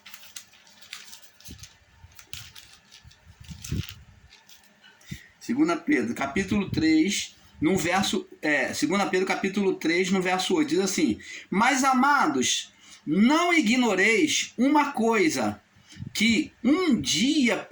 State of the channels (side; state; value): both; identical; correlation 1.00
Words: Segunda Pedro, capítulo 3, no verso... 2 Pedro, capítulo 3, no verso 8, diz assim: mas, amados, não ignoreis uma coisa, que um dia